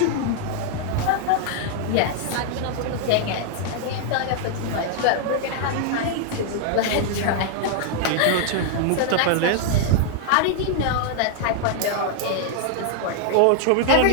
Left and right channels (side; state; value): both; different; correlation 0.00